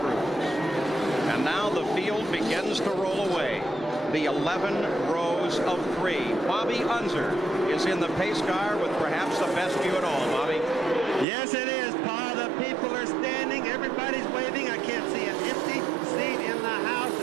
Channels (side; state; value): left; drops out; at 11.2 s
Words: And now the field begins to roll away. The 11 rows of 3. Bobby Unser is in the pace car with perhaps the best view at all. Bobby? Yes, it is, Paul. The people are standing. Everybody's waving. I can't see an empty seat in the house.